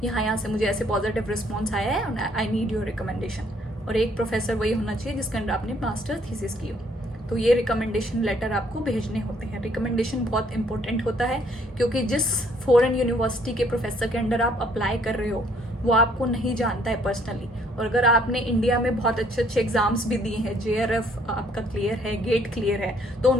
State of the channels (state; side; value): normal; both; correlation 0.64